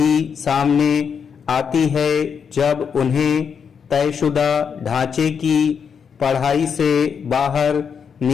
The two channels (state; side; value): quieter; right; 6.8 dB